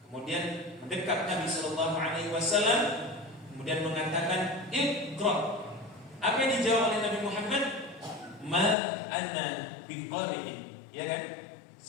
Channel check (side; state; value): right; drops out; at 8.8 s